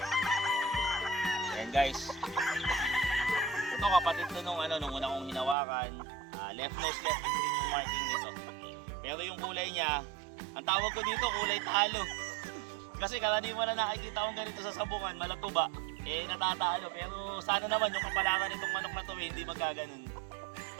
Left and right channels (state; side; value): drops out; left; at 5.6 s